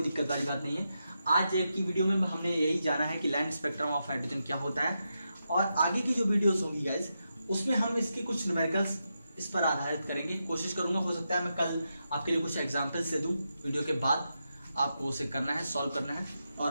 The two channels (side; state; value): both; inverted; correlation -0.86